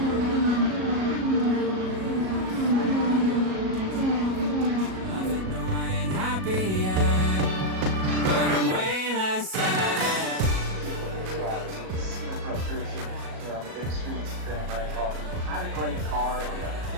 On the big streets of Grand Rapids. Had a great car.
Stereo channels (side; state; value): left; late; 37 ms